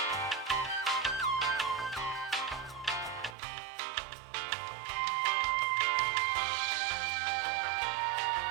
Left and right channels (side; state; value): left; drops out; at 3.4 s